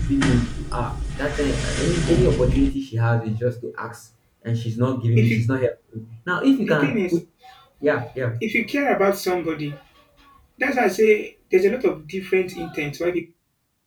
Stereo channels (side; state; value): both; identical; correlation 1.00